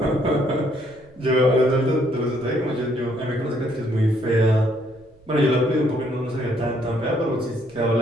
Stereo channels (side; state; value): right; noise; rumble, 28 dB below the sound